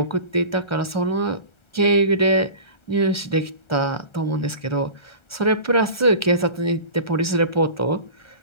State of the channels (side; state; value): right; late; 1.3 ms